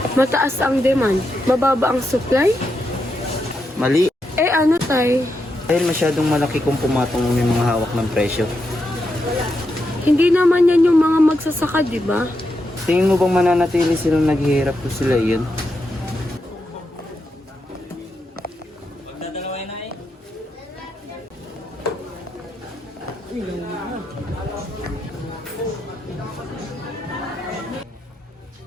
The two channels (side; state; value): both; normal; correlation 0.84